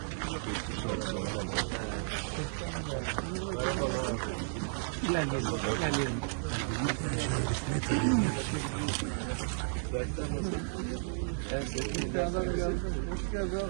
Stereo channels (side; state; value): left; silent; digital silence